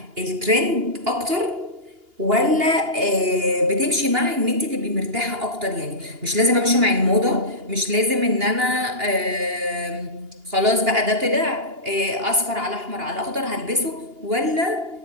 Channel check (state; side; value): late; left; 2.8 ms